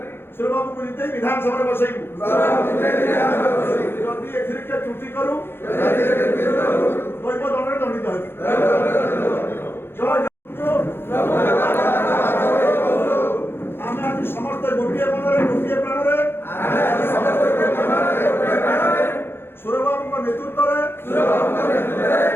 ସୁରବାବୁଙ୍କୁ ଜିତେଇ ବିଧାନସଭାରେ ବସେଇବୁ। ଯଦି ଏଥିରେ କିଏ ତ୍ରୁଟି କରୁ ଦୈବ ଦଣ୍ଡରେ ଦଣ୍ଡିତ ହେବି। ଆମେ ଆଜି ସମସ୍ତେ ଗୋଟିଏ ମନରେ ଗୋଟିଏ ପ୍ରାଣରେ ସୁରବାବୁଙ୍କ ନେତୃତ୍ୱରେ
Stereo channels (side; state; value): right; late; 0.11 ms